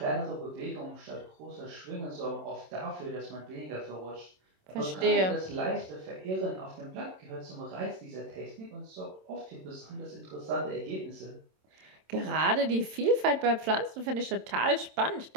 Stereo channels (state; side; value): late; left; 27 ms